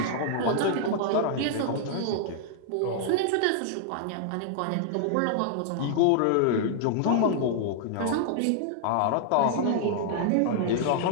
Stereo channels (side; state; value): both; different; correlation -0.01